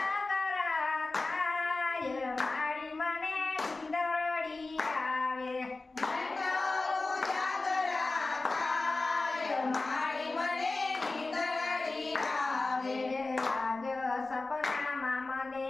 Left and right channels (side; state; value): right; quieter; 3.4 dB